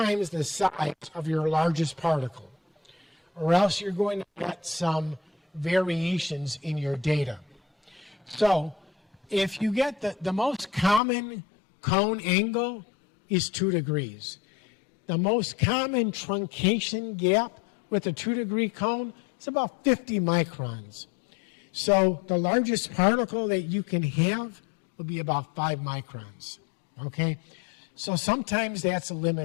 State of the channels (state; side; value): drops out; right; at 11.0 s